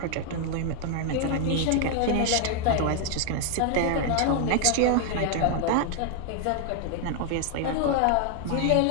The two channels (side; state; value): both; different; correlation 0.00